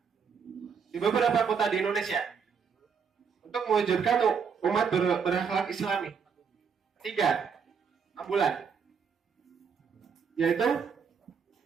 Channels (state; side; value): quieter; left; 6.3 dB